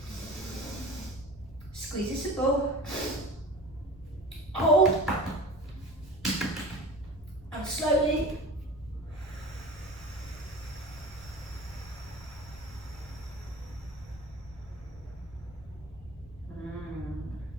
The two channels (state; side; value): normal; both; correlation 0.37